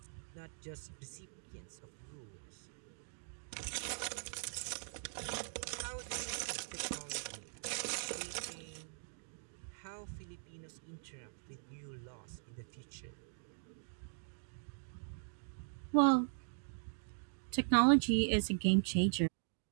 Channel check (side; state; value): left; silent; digital silence